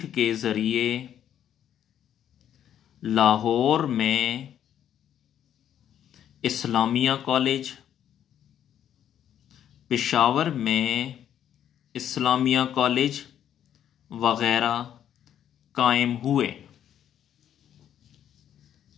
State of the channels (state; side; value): quieter; right; 10.1 dB